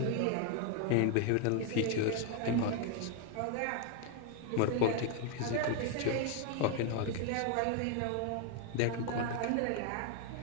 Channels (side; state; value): both; different; correlation 0.01